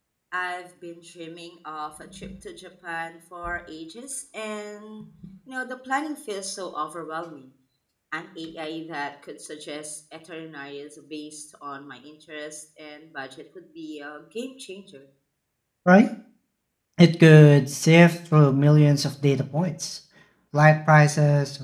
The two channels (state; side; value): identical; both; correlation 1.00